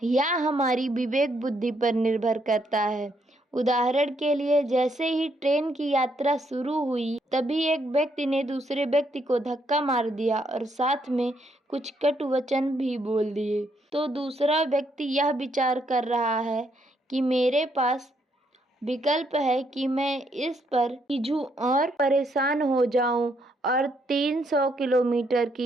यह हमारी विवेक बुद्धि पर निर्भर करता है। उदाहरण के लिए, जैसे ही ट्रेन की यात्रा शुरू हुई, तभी एक व्यक्ति ने दूसरे व्यक्ति को धक्का मार दिया और साथ में कुछ कटु वचन भी बोल दिए। तो दूसरा व्यक्ति यह विचार कर रहा है कि मेरे पास विकल्प है कि मैं इस पर खींचूं और परेशान हो जाऊं और 300 किलोमीटर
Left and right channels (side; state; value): both; normal; correlation 0.74